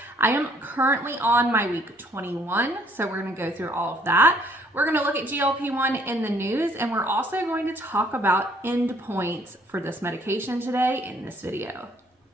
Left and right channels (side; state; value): both; normal; correlation 0.62